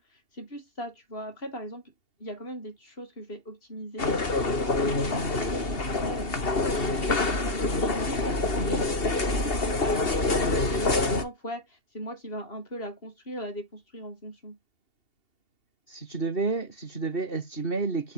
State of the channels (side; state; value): right; late; 2.8 ms